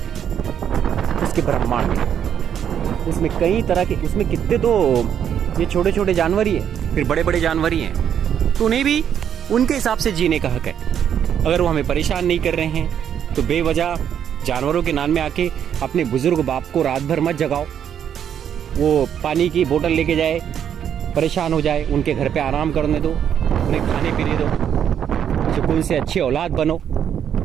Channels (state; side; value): quieter; left; 8.9 dB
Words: उसके ब्रह्मांड में। उसमें कई तरह के, उसमें कितने तो ये छोटे छोटे जानवर ही है, फिर बड़े बड़े जानवर ही हैं। तो उन्हें भी उनके हिसाब से जीने का हक है। अगर वो हमें परेशान नहीं कर रहे हैं तो बेवजह जानवरों के नाम में आके अपने बुजुर्ग बाप को रात भर मत जगाओ। वो पानी की बोतल लेके जाए, परेशान हो जाए, उनके घर पे आराम करने दो, उन्हें खाने पीने दो, सुकून से अच्छी औलाद बनो।